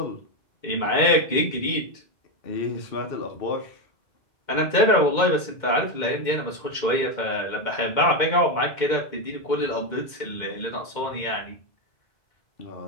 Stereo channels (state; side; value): late; right; 2.1 ms